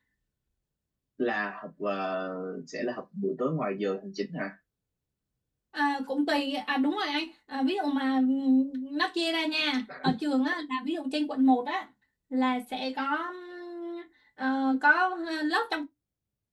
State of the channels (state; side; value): identical; both; correlation 1.00